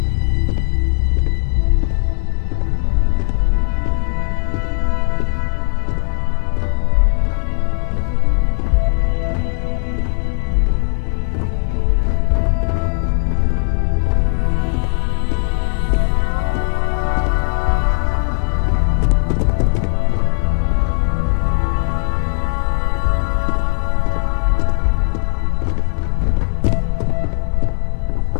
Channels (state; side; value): silent; right; 62 dB below the other